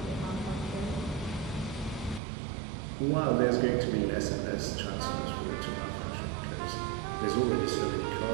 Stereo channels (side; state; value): left; drops out; at 2.2 s